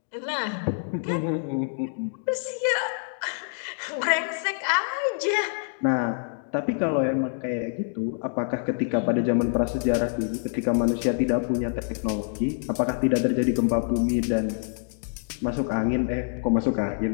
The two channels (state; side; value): silent; right; digital silence